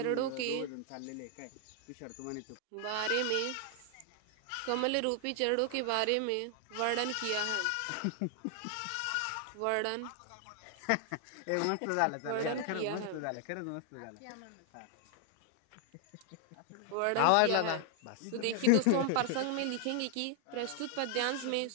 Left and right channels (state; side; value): different; both; correlation 0.00